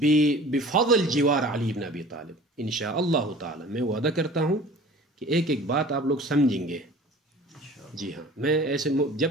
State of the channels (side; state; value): both; normal; correlation 0.44